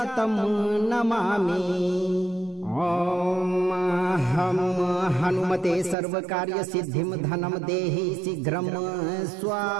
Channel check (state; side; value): drops out; left; at 6.0 s